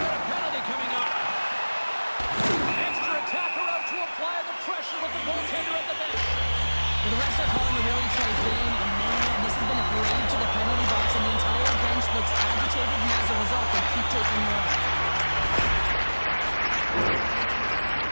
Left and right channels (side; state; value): both; inverted; correlation -1.00